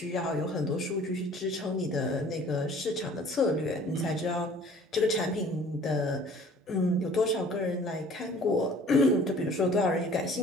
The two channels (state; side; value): normal; both; correlation 0.51